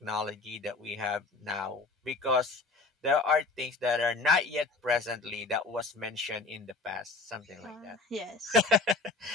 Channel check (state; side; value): quieter; right; 3.7 dB